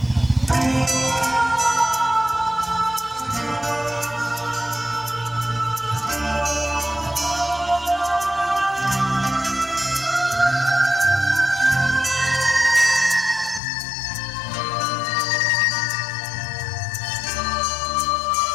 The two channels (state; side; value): drops out; right; at 13.6 s